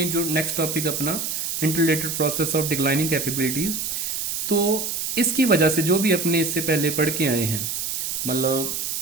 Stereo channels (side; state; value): right; noise; hiss, 2 dB below the sound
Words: जो नेक्स्ट टॉपिक अपना interrelated process of declining capabilities, तो इसकी वजह से जो भी अपने इससे पहले पढ़ के आए हैं, मतलब